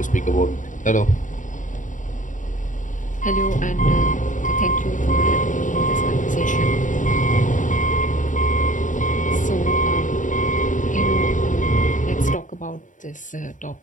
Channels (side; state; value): right; late; 0.37 ms